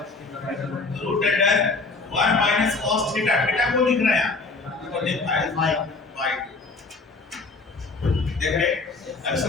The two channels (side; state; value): right; quieter; 3.9 dB